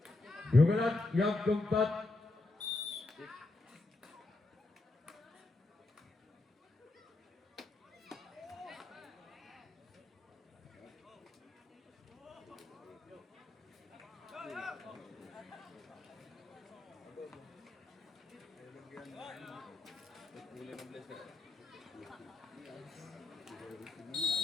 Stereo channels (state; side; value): quieter; right; 3.1 dB